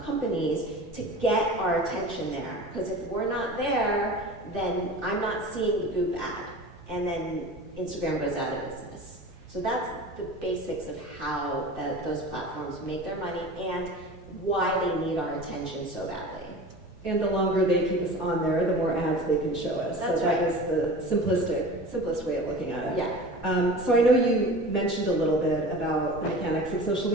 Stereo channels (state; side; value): normal; both; correlation 0.36